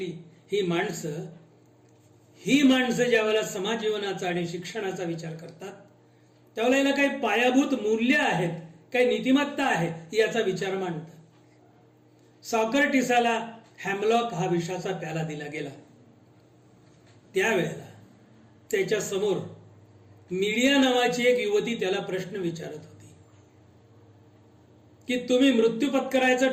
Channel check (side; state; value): both; identical; correlation 1.00